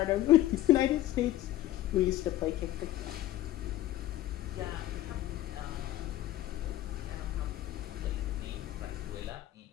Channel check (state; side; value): quieter; right; 14.3 dB